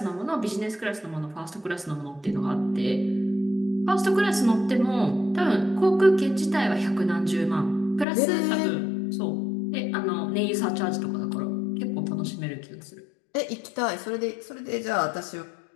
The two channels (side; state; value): right; drops out; at 8.1 s